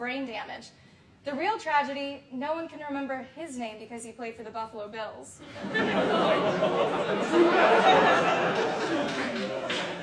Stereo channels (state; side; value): identical; both; correlation 1.00